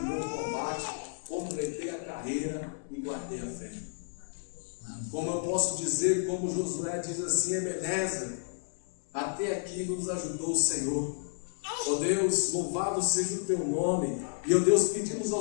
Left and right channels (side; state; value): right; silent; digital silence